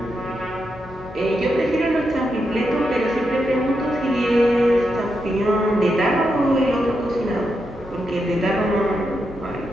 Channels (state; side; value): normal; both; correlation 0.85